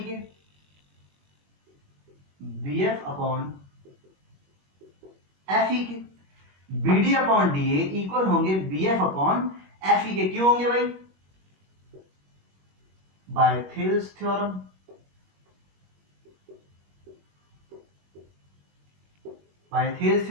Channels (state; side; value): late; left; 21 ms